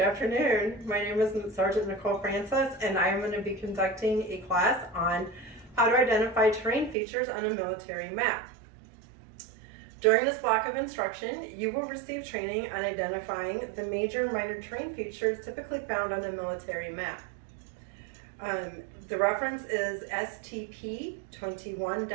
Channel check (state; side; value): drops out; left; at 7.0 s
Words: My name is Sergeant Nicole Francis, and I am going to be conducting a class on how to identify terrain features on a military map. During this block of instruction, you will receive training on identifying the major and minor terrain features typically found on a military map. The reference is STP